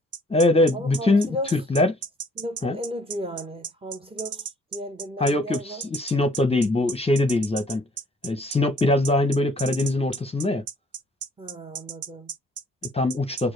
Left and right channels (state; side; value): normal; both; correlation 0.60